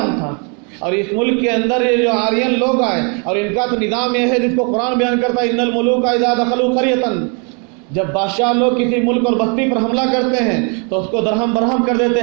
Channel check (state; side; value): quieter; left; 36.5 dB